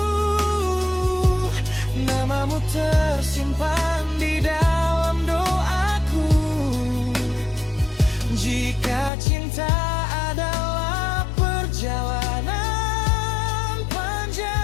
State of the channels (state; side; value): drops out; right; at 9.1 s